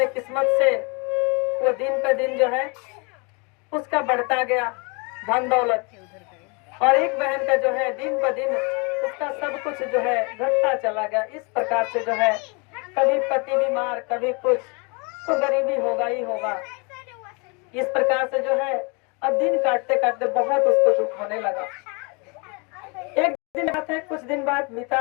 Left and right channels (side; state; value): right; quieter; 31.6 dB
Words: किस्मत से वो दिन पे दिन जो है उसका बढ़ता गया धन दौलत, और एक बहन का जो है दिन ब दिन उसका सब कुछ जो है घटता चला गया। इस प्रकार से जो है कभी पति बीमार, कभी कुछ, तो गरीबी होगा ही होगा। इस प्रकार से जो है अब दिन काटते काटते बहुत उसको दुख होने लगा। एक दिन बात है, कुछ दिन बाद